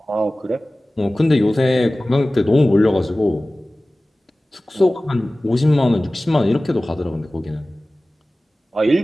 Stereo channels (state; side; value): normal; both; correlation 0.97